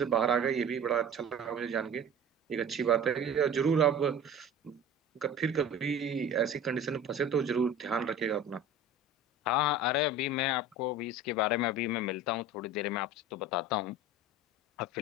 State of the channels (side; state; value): both; normal; correlation 0.38